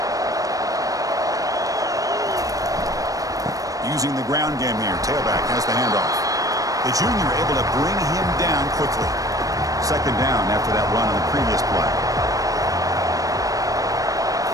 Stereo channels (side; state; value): left; late; 0.17 ms